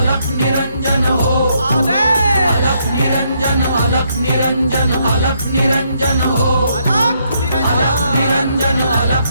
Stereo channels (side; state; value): both; inverted; correlation -0.74